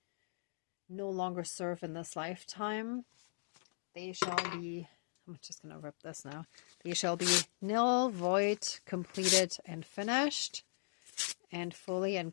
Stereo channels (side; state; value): right; silent; digital silence